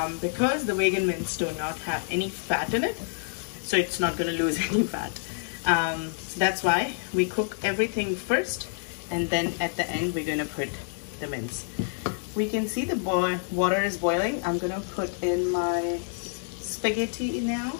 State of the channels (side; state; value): right; silent; digital silence